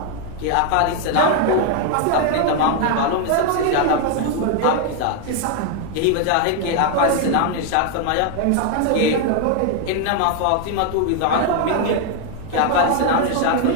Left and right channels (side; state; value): both; different; correlation 0.00